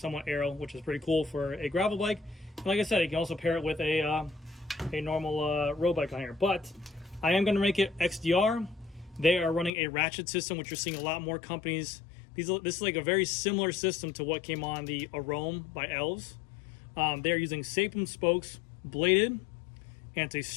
aero, which is pretty cool for a gravel bike. And like I said, you can also pair it with a normal road bike on here. But I am going to make it XDR. They are running a ratchet system, which you're seeing a lot more companies. This is like a very similar system to what came on the Arome by Elves. They're using Sapum spokes, bladed, and it's a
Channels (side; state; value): right; drops out; at 9.7 s